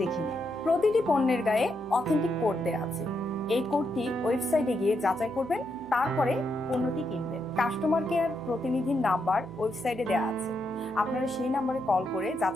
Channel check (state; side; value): noise; right; hum, 20 dB below the sound